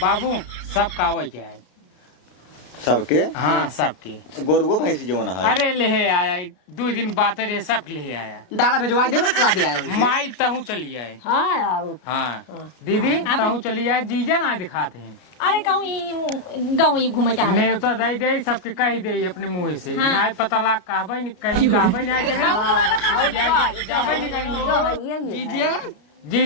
बाबू सब कावे के है सबके हाँ सबके गोरुओ भैंसी जो है अरे ले आया 2 दिन बात रहे सब ले आया डाला भेजवा दे ला दे आया माई तहू चली आए हाँ आओ हाँ दीदी तहू चली आए जीजा ना दिखाते हैं अरे कहूँ गाँव ही घूमे चाह रहे ने तो दे दे सबके कह दे अपने मुँह से ना पता लाग कहबे नहीं कहीं कहबे नहीं जाबे नहीं कहीं जीजिए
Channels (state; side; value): late; right; 33 ms